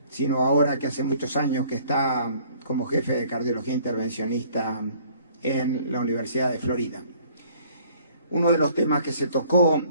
sino ahora que hace muchos años que está como jefe de cardiología intervencionista en la Universidad de Florida. Uno de los temas que se tocó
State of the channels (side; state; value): both; inverted; correlation -0.58